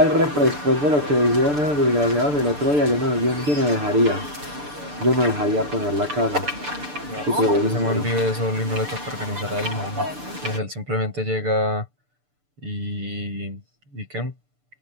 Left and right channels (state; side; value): late; left; 6.8 ms